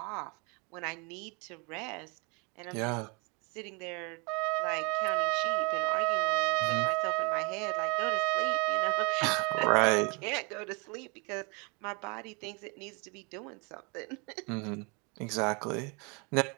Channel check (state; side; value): quieter; left; 32.1 dB